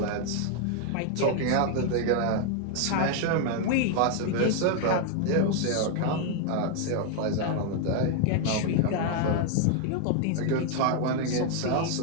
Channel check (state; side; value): different; both; correlation 0.00